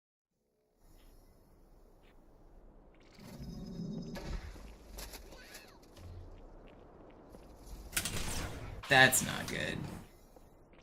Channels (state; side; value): identical; both; correlation 1.00